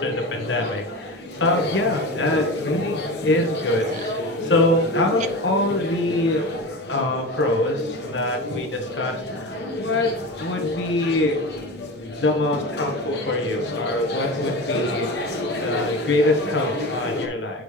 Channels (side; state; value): both; normal; correlation 0.28